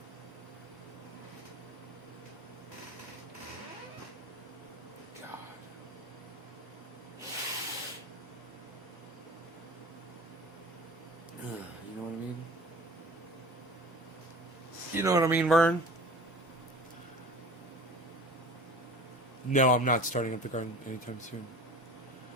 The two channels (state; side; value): normal; both; correlation 0.39